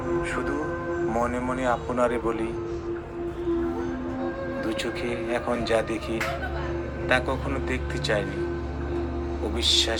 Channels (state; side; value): identical; both; correlation 1.00